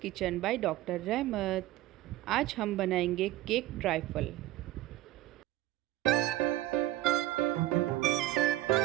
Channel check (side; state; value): left; quieter; 15.8 dB